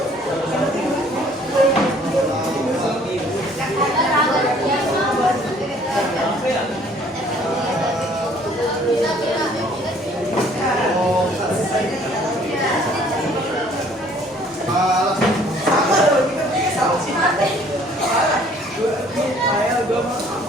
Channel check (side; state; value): both; normal; correlation 0.58